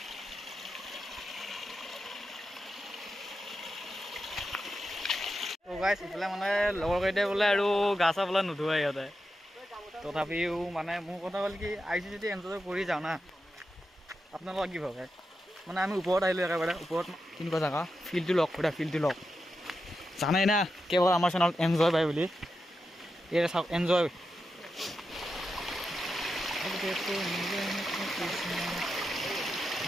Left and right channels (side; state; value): both; normal; correlation 0.88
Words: তো গাইছ ইফালে মানে লগৰকেইটাই বোলে আৰু গা চা বোলে নুধুৱাই সিহঁতে তথাপিও মানে মোৰ কথা হ'ল কি আহিছোঁ যদি এনজয় কৰি যাওঁ না আপোনালোকক কি ভাবে মানে আমি ওপৰত আহিলোঁ একেবাৰে ওপৰত কেনেকুৱা জেগা ফিল্ডটো লওক জানাই না কেৱল আমাৰ চেনেলত এনজয় পায় বুলি এই চাওক এনজয়